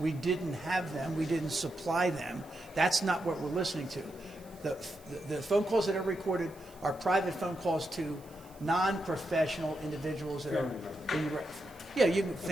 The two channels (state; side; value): noise; right; hiss, 25 dB below the sound